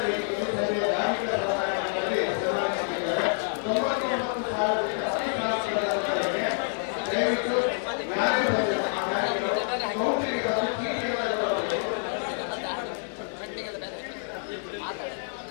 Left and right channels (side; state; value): right; silent; digital silence